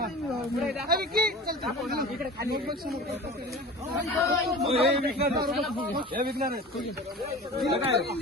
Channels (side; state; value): both; normal; correlation 0.37